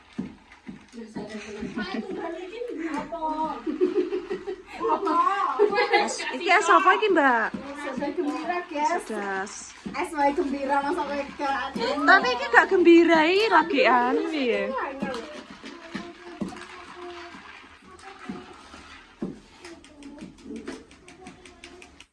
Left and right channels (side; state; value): both; identical; correlation 1.00